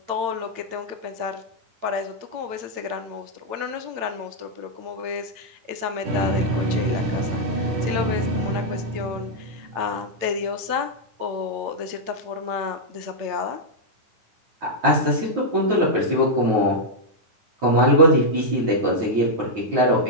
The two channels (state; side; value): late; left; 8.9 ms